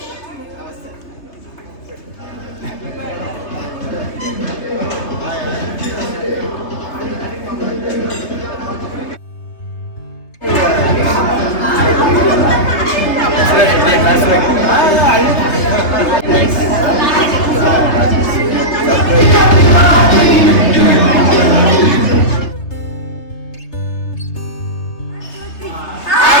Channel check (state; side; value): late; right; 3.3 ms